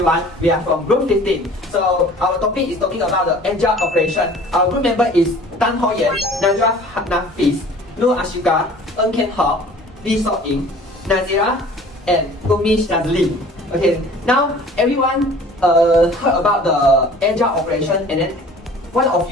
we are from group 15. So our topic is talking about the agile operation. Our group member is TANG, NAJWA, NAFIS, ASYIQAH, HOCK, Yeen, NAZIERAH, and SHAZLEEN. Okay, now everyone heard about the agile operation, and then one of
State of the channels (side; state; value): both; normal; correlation 0.47